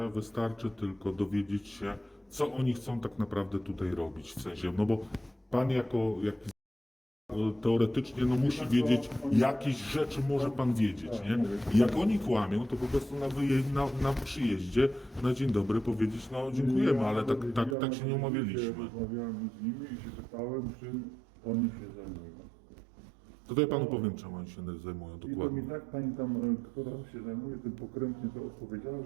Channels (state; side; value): drops out; left; at 17.8 s